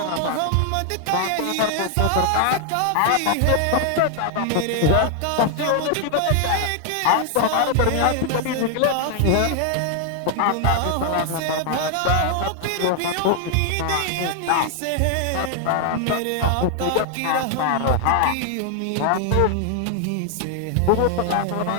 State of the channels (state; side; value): different; both; correlation 0.00